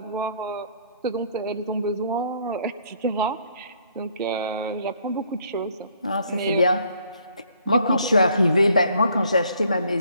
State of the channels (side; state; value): both; inverted; correlation -0.64